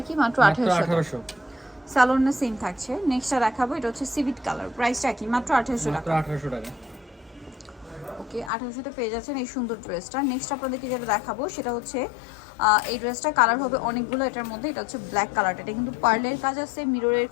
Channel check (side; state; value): right; drops out; at 8.5 s